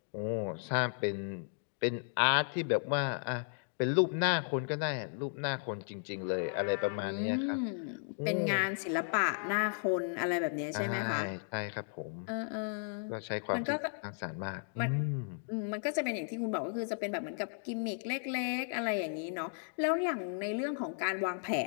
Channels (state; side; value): silent; right; digital silence